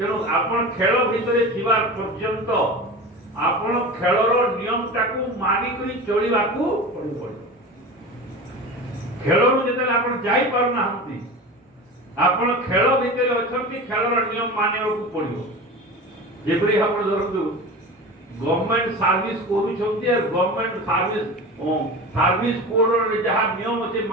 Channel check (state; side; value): normal; both; correlation 0.31